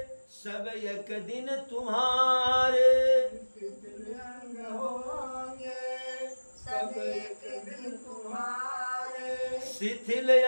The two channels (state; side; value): inverted; both; correlation -1.00